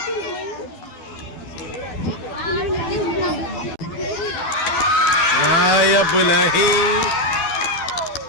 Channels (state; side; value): late; right; 12 ms